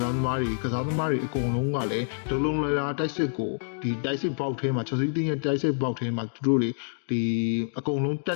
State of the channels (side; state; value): right; silent; digital silence